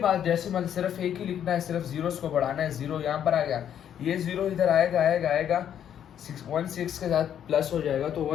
डेसिमल सिर्फ एक ही लिखना है, सिर्फ जीरोस को बढ़ाना है, 0 यहाँ पर आ गया, ये 0 इधर आएगा 16 के साथ प्लस हो जाएगा, तो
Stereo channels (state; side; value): quieter; right; 9.6 dB